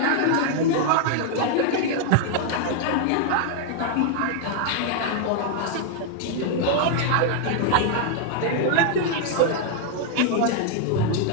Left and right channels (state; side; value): different; both; correlation 0.00